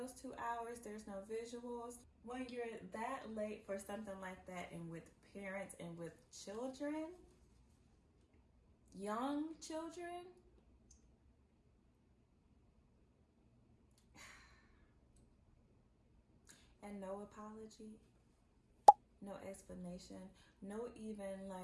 2 hours. There's no visuals. When you're that late for something like that, and with parents and with children, young children, and no apology, no explanation, no even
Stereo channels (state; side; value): identical; both; correlation 1.00